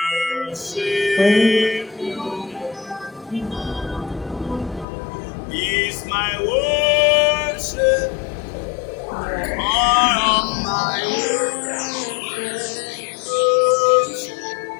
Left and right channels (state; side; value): drops out; right; at 4.9 s